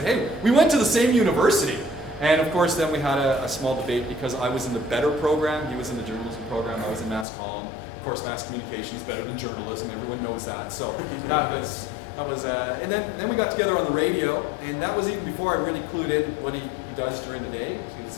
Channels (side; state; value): right; drops out; at 7.2 s